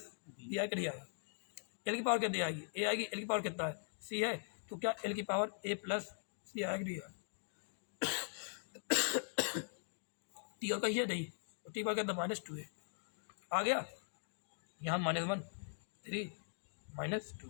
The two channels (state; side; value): silent; right; digital silence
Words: B आएगा, नहीं आएगा। L की पावर कितनी आएगी, A आएगी, L की पावर कितना है, C है। तो क्या L की पावर A प्लस C आएगा, नहीं आएगा। T और कहीं है नहीं, तो T पावर कितना -2 है, आ गया यहाँ -1 3